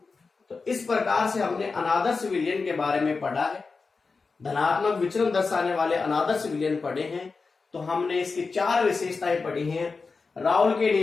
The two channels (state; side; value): quieter; right; 4.4 dB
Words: तो इस प्रकार से हमने अनादर्श विलयन के बारे में पढ़ा है, धनात्मक विचलन दर्शाने वाले अनादर्श विलयन पढ़े हैं। तो हमने इसकी 4 विशेषताएं पढ़ी हैं। राउल के